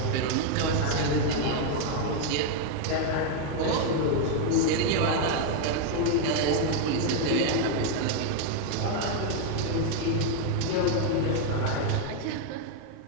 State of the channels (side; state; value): both; different; correlation 0.01